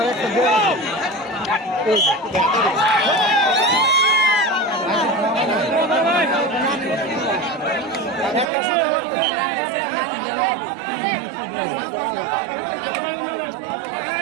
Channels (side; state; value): left; drops out; at 8.5 s